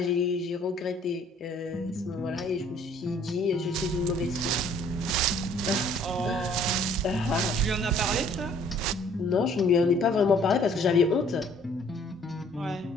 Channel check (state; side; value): normal; both; correlation 0.58